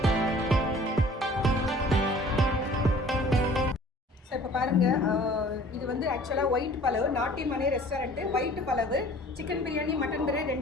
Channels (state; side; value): normal; both; correlation 0.50